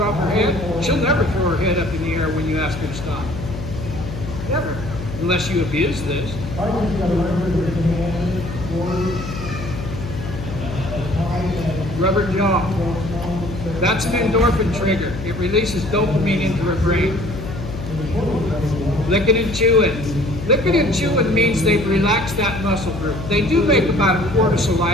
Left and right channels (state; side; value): noise; left; hum, 8 dB below the sound